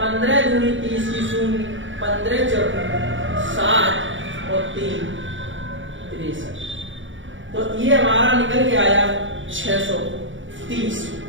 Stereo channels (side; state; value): left; late; 0.56 ms